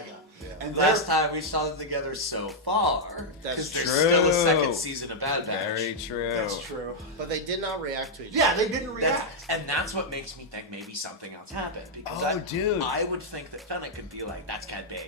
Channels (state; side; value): normal; both; correlation -0.04